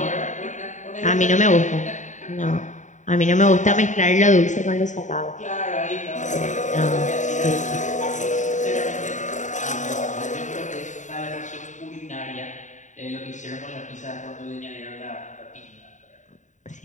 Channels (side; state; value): right; late; 0.36 ms